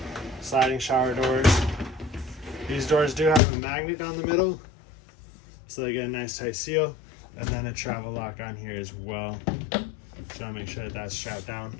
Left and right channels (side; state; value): right; drops out; at 3.4 s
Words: sliding shower doors. These doors do have a magnet down the middle, so they get a nice tight seal, and then a travel lock on here as well. So I make sure that that's strapped down